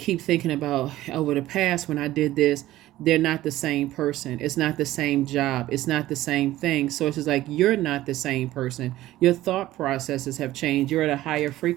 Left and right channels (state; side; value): quieter; left; 15.4 dB